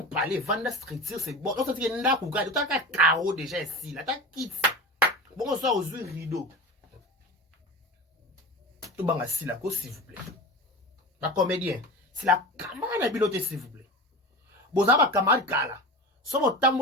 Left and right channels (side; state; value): both; normal; correlation 0.30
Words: parle, vendre structure c'est bon. On sent que n'a pas tu as carreau déjà ici, là t'as kit. Bon on sort aux yeux rideau. Tout banga si la cause s'il vous plaît. La comédien, c'est la camarade à biloté s'il vous plaît. Bon ça va camarade kala. Sur mon